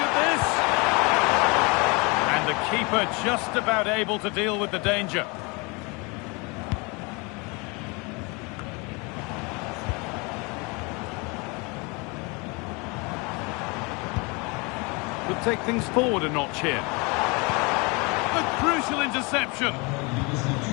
this! And the keeper just about able to deal with the danger. Could take things forward a notch here. A crucial interception.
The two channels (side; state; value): right; quieter; 28.8 dB